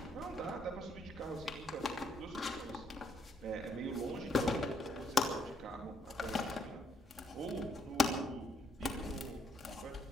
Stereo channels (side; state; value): both; normal; correlation 0.71